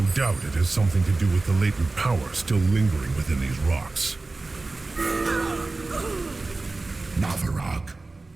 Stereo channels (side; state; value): left; quieter; 3.4 dB